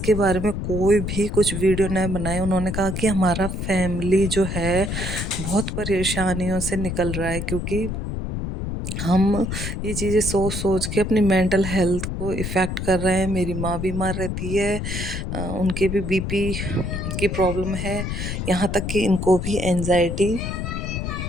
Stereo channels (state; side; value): noise; left; rumble, 4 dB below the sound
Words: बारे में कोई भी कुछ वीडियो न बनाए। उन्होंने कहा कि हमारा फैमिली जो है बहुत परेशानियों से निकल रहा है, क्योंकि हम ये चीज़ें सोच सोच के अपनी मेंटल हेल्थ को इफ़ेक्ट कर रहे हैं। मेरी माँ बीमार रहती है, उनके भी बीपी की प्रॉब्लम है, यहाँ तक कि इनको भी एंजाइटी